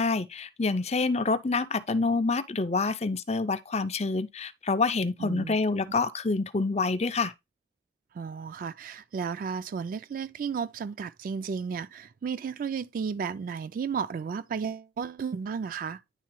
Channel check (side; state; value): both; normal; correlation 0.32